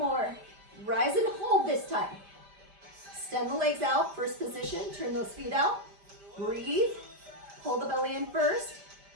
Rise and hold this time. Extend the legs out, first position. Turn those feet out. Breathe. Pull the belly in first,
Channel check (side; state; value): left; late; 5.0 ms